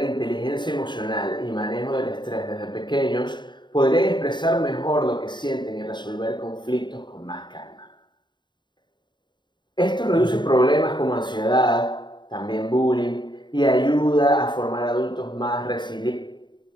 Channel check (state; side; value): late; right; 0.22 ms